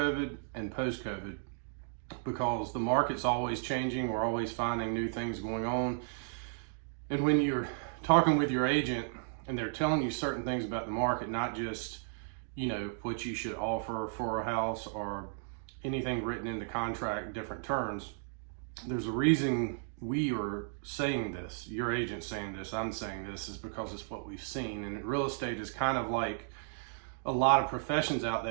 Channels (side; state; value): left; silent; digital silence